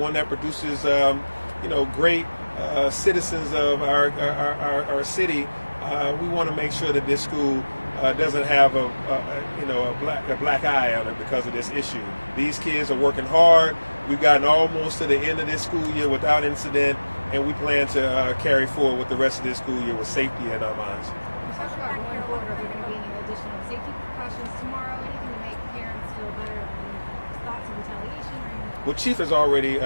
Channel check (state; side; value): inverted; both; correlation -1.00